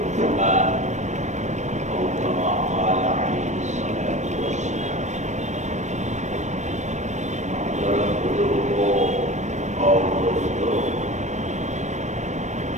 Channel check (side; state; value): left; late; 0.34 ms